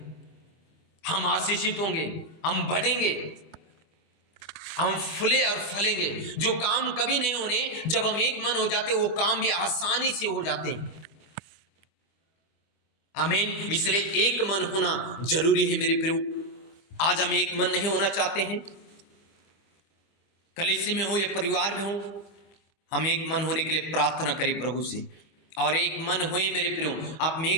हम आशीषित होंगे, हम बढ़ेंगे, हम फूले और फलेंगे। जो काम कभी नहीं होने, जब हम एक मन हो जाते वो काम भी आसानी से हो जाते हैं। आमीन। इसलिए एक मन होना जरूरी है मेरे प्रियो। आज हम एक मन नहीं होना चाहते हैं, कलीसिया में हो या परिवार में हो, हम एक मन होने के लिए प्रार्थना करें प्रभु से, और एक मन होए मेरे प्रियो। आप में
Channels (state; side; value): late; right; 25 ms